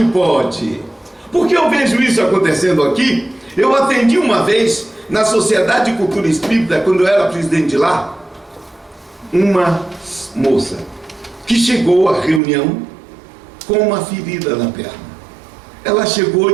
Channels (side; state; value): left; drops out; at 12.4 s